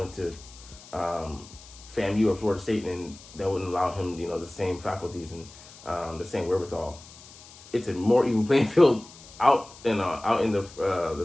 to FAMU or Florida State, and that wouldn't allow him, the same faculties and the same wherewithal. It's a more even playing field out in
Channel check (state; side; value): noise; left; hiss, 20 dB below the sound